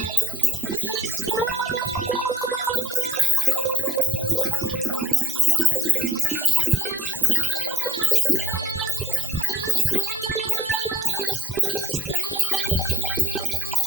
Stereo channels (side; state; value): both; normal; correlation 0.65